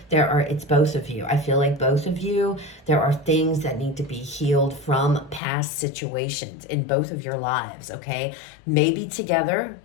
It's both of you. I feel like both of you, there are things that need to be healed from past situations in both of your lives, okay? Maybe together,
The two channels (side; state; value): right; drops out; at 5.4 s